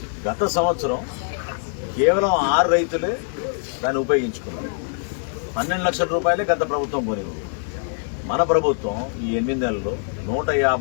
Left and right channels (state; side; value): silent; right; digital silence